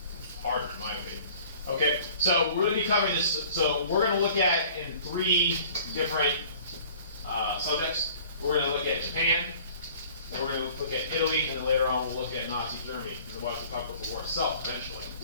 harder, in my opinion. Okay, so we're going to be covering this. So we're going to look at in 3 different subjects. We're going to look at Japan, then we're going to look at Italy, and then later on we'll look at Nazi Germany. And then we'll talk about the war itself eventually.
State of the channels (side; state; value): both; inverted; correlation -0.49